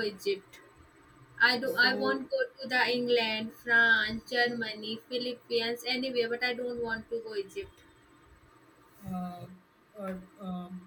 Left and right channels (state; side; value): identical; both; correlation 1.00